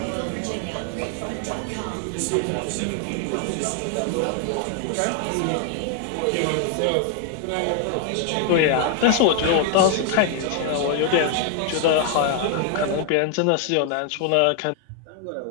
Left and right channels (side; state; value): both; different; correlation 0.00